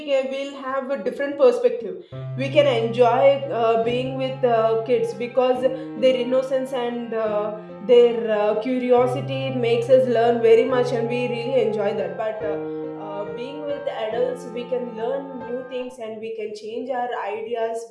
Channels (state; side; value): identical; both; correlation 1.00